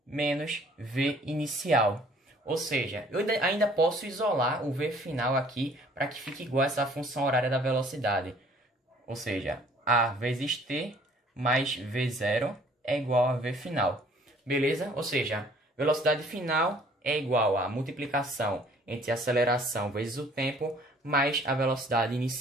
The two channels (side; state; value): both; normal; correlation 0.56